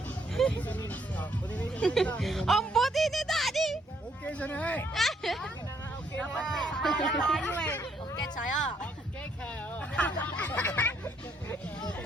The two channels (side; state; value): both; normal; correlation 0.70